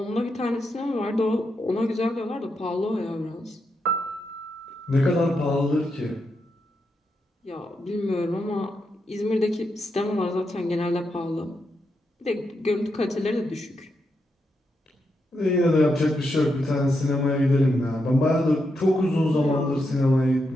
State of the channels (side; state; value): both; normal; correlation 0.84